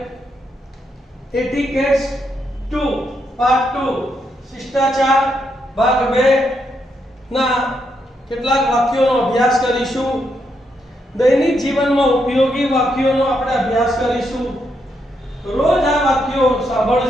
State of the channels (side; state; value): both; normal; correlation 0.79